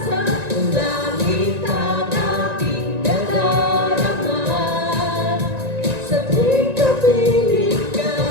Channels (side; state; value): left; late; 1.9 ms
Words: ang langit ang aking nadarama. Sa tuwing kapiling ka,